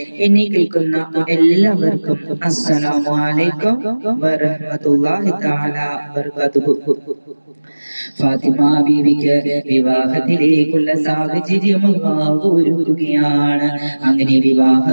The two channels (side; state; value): both; inverted; correlation -1.00